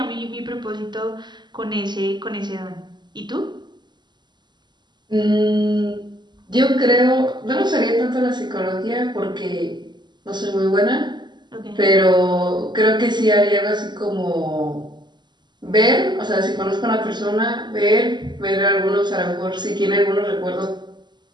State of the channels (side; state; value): left; late; 0.21 ms